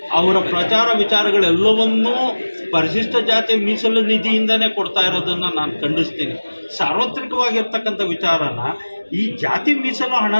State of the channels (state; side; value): inverted; both; correlation -1.00